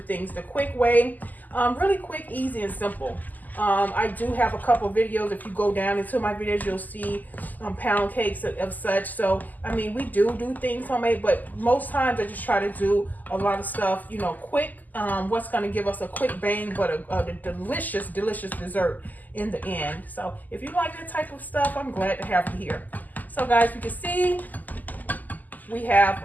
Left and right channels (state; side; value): late; right; 0.083 ms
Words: the quick way. Really quick, easy, and simple. I do have a couple videos. If you go down into my videos, you'll see pound cakes of such. So, I mean, we do things homemade, but most times I just try to do a lot of stuff, you know, quick. What's going to give us a quick bang, but a delicious, delicious dessert in the end. So, if you like that type of stuff, I'm glad to have you here. So, guys, you can see we have